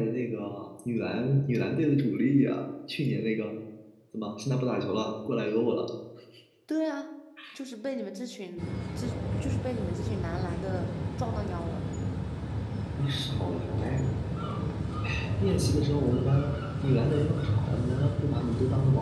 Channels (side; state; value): both; identical; correlation 1.00